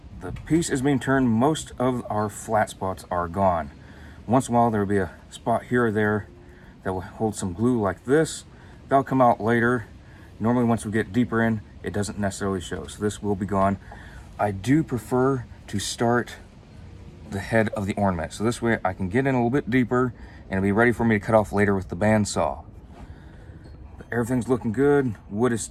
the piece is being turned. Most of our flat spots are gone. Once in a while there will be a spot here or there that will hold some glue like this. That'll come out later. Normally once we get deeper in, it doesn't necessarily show. So this will be gone. I do prefer to start the head of the ornament. So this way I can get in a little bit deeper and it'll be ready for me to cut off later with the bandsaw. But everything's looking good. Wood is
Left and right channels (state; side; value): identical; both; correlation 1.00